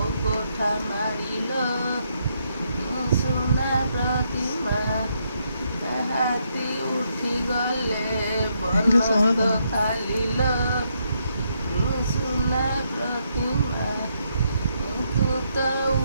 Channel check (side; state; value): both; inverted; correlation -0.77